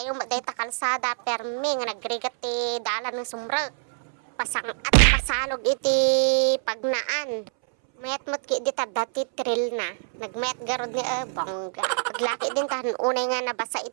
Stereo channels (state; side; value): silent; left; 61 dB below the other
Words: yung dayta kalsada, permi nga nagrigat ti dalan ng sumrek. Pasang at pasalog iti pagnaan. Mayat mo't ki di dati trail na. Nagmayat garod ni bongga. Paglaki din tahan unay nga nabasa